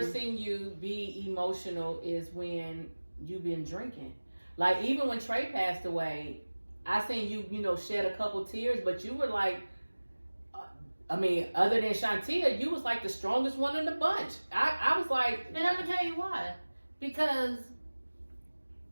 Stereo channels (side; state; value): both; inverted; correlation -1.00